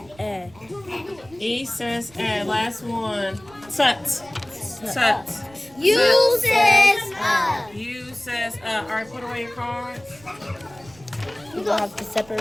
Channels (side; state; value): right; noise; rumble, 25 dB below the sound